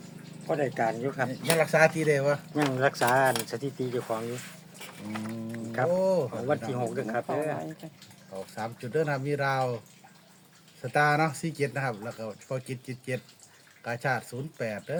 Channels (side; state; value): both; identical; correlation 1.00